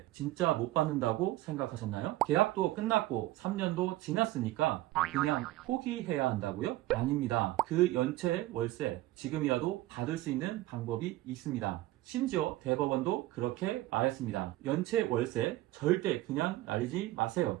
진짜 못 받는다고 생각하셨나요? 계약도 끝났고 3년도 지났으니까 그냥 포기해야 한다고요? 아닙니다. 그 연체 월세 지금이라도 받을 수 있는 방법이 있습니다. 심지어 대법원도 그렇게 말했습니다. 연체 월세 절대 그냥 날리지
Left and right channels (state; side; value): quieter; left; 16.9 dB